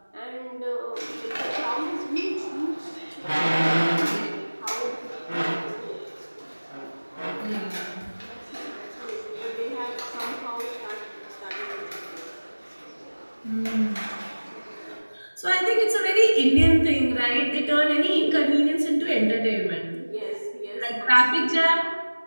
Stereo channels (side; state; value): both; inverted; correlation -1.00